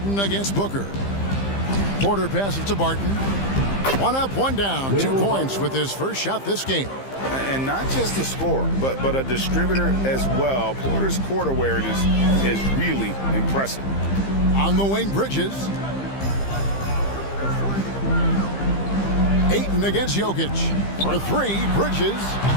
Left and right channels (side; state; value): right; late; 15 ms